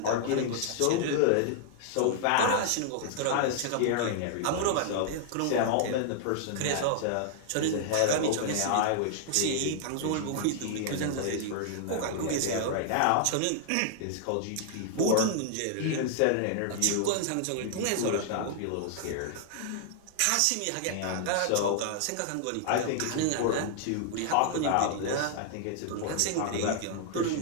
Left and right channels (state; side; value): different; both; correlation -0.01